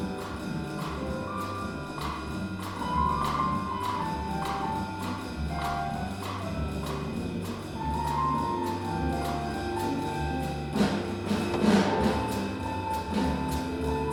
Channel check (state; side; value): identical; both; correlation 1.00